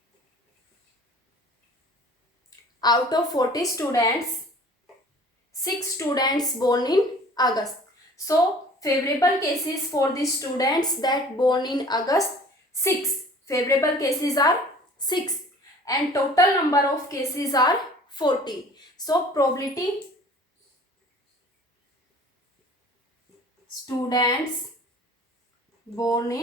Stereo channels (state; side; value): normal; both; correlation 0.48